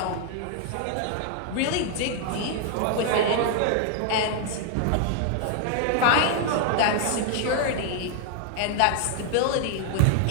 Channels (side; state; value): both; different; correlation 0.00